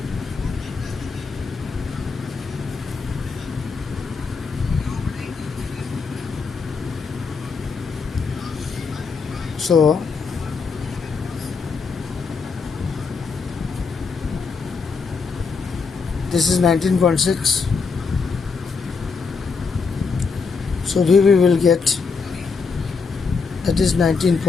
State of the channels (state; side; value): quieter; right; 4.9 dB